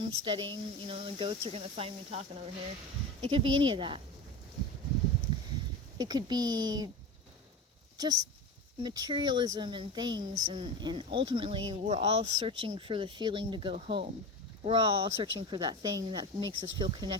You know, the goats are going to find me talking over here. It could be any of that. It could be just materialism and things, and ultimately we're all searching for the feeling to go home. We're all searching for that thing that makes us feel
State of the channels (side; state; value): both; normal; correlation 0.27